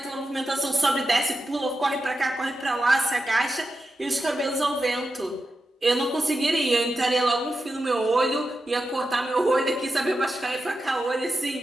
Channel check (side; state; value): both; normal; correlation 0.89